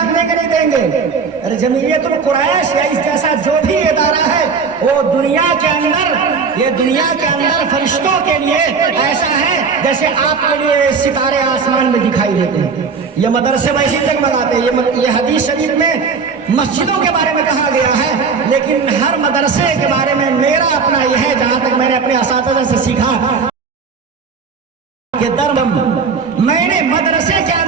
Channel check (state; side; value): quieter; left; 5.3 dB